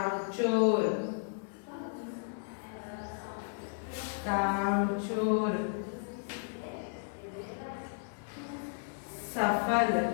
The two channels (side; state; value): right; silent; 55 dB below the other